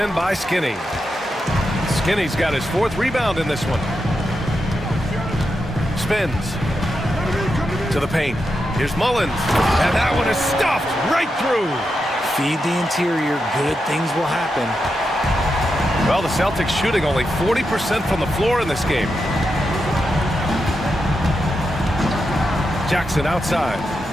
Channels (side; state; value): both; normal; correlation 0.86